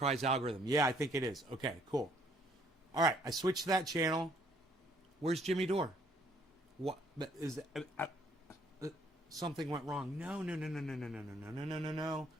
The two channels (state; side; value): normal; both; correlation 0.64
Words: algorithm. Yeah, I think it is. Okay, cool. All right, I switched to that channel. Where's Jimmy Dore? What is something went wrong? No.